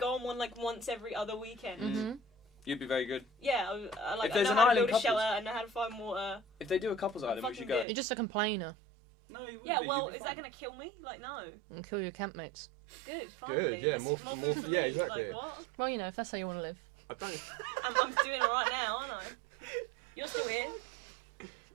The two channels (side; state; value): left; drops out; at 7.9 s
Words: on one like once every other weekend. Mm-hmm. You'd be very good. Yeah, If I there's know an how to island build a couples- shelter. I know how to find water. If they do a couples island, we fucking should go. good. You're just a complainer No, you wouldn't Yeah, be. well, You'd be is that fine. gonna kill me? Like, no. and kill your campmates. Good, finally. yeah, That's more food for yeah, me. exactly. Like, what? Well, you know, if that's how you want to live. I don't, I'm doing it right now, aren't I? You're still here.